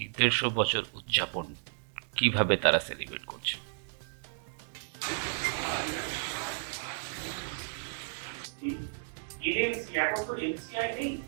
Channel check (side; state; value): left; silent; digital silence